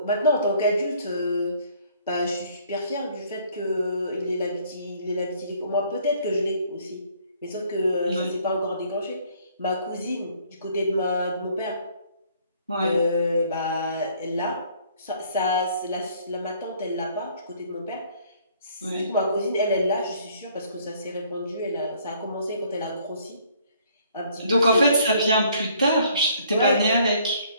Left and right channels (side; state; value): both; inverted; correlation -0.61